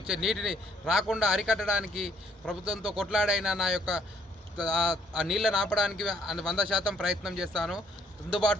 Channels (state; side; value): normal; both; correlation 0.65